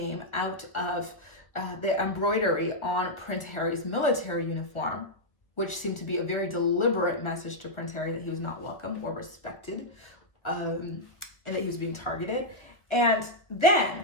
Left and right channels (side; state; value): right; late; 1.1 ms